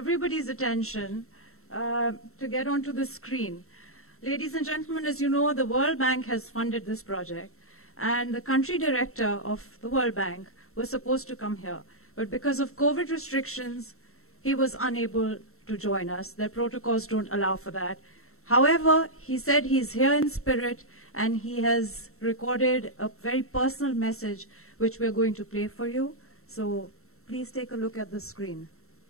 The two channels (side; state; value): right; late; 0.63 ms